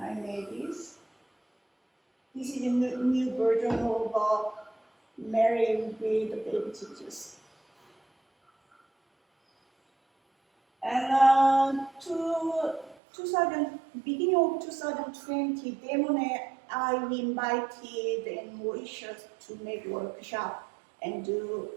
made this. This is a new version of Mary with the baby Jesus. And 2000, beginning of 2020, Damon and I we invited in Mauritius to make workshop and do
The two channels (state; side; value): drops out; left; at 13.0 s